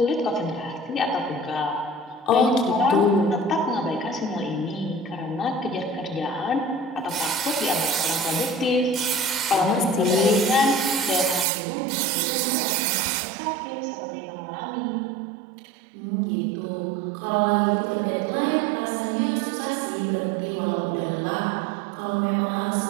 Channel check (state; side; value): drops out; left; at 11.5 s